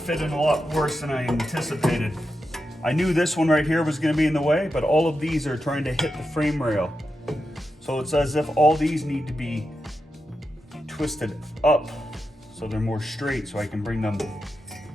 a lot worse than I anticipated. I knew this one right here was gonna be in the way, but all of these are trying to hit the frame rail. So it's as if all these need to be twisted up so they're more straight, so I can bring them,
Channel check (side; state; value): both; normal; correlation 0.88